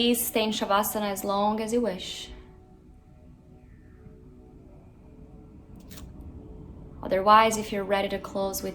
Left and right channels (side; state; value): both; identical; correlation 1.00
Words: stay in Shavasana as long as you wish. Otherwise, if you're ready to close